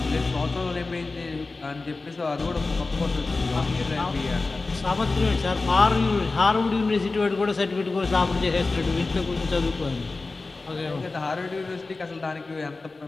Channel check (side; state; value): right; quieter; 3.6 dB